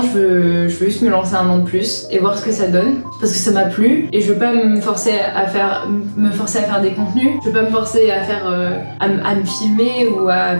je veux juste me lancer un an de plus et voir ce que ça donne parce que ça m'a plu et je veux pas me forcer à faire des contenus, je veux pas me forcer à faire à me filmer ou à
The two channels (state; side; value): inverted; both; correlation -1.00